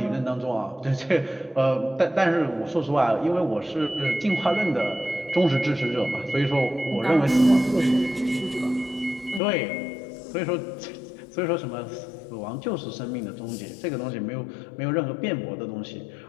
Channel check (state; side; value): drops out; right; at 9.4 s